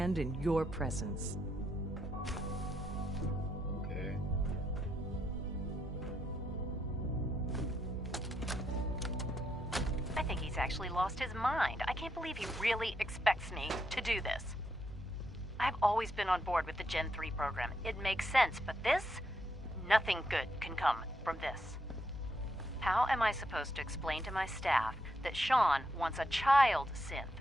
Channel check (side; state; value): both; normal; correlation 0.79